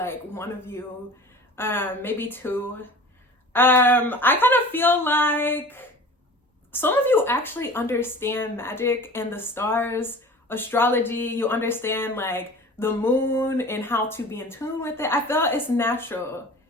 one of you, maybe two. I kind of feel like some of you actually understand magic and the stars, astrology. You understand like the moon and how to be in tune with it. I feel it's natural.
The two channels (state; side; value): normal; both; correlation 0.41